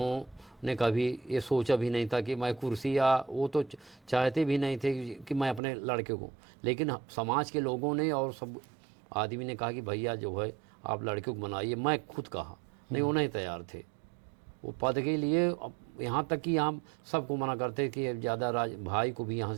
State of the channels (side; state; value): left; drops out; at 5.6 s